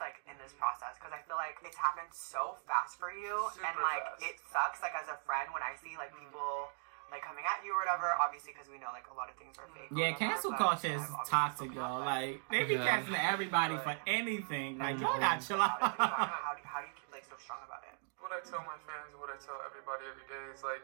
like in this process? Because I feel like it's happened so fast for you, and Super like fast. it sucks. Like as a friend, when I see like people like coming at you or whatever, obviously because we know like a lot of things are fake. or Yeah, whatever, cancel but culture is I've obviously toxic, spoken y'all. up, but Like, they be Yeah. canceling everybody for anything. Like, y'all got chill out. how do you keep like so strong about it? What I tell my fans, what I tell everybody every day is like,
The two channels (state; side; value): silent; left; 52 dB below the other